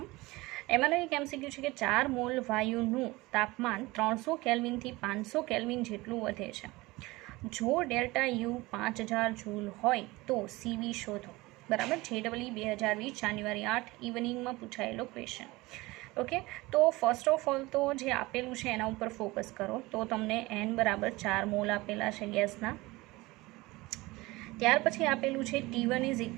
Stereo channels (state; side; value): quieter; left; 21.3 dB